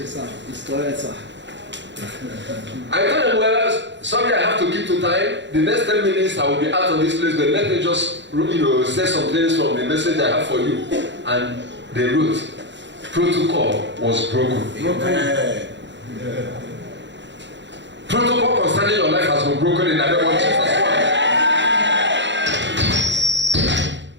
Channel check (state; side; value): late; left; 0.52 ms